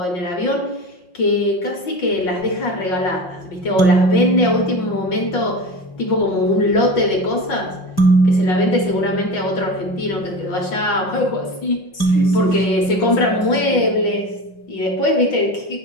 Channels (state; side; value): late; right; 5.6 ms